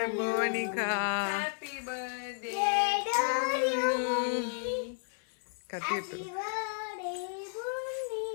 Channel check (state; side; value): silent; right; 56 dB below the other